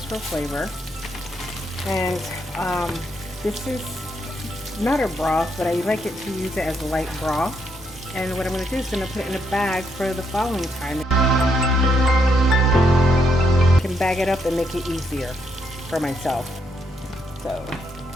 for flavor. And this is not a broth, but I like it to use it as a light broth. And what I'm going to do is going to put it in a bag for the following time. I can bag it up and make it easier for myself. So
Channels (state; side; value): normal; both; correlation 0.76